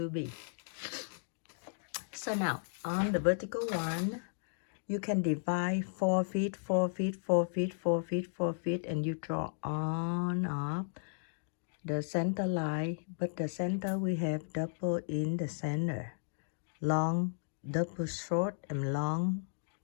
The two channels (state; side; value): silent; right; digital silence